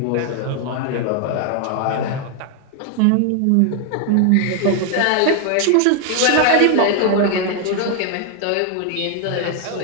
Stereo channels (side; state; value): both; different; correlation 0.00